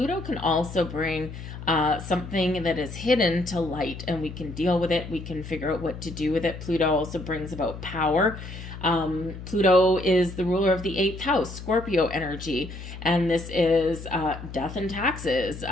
can also bring something that is hidden to light, and we can deal with it. We can figure out what to do with it. Pluto also brings about power. Pluto is the ruler of the 8th house, Scorpio energy, and this is death and taxes,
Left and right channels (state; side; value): noise; left; hum, 11 dB below the sound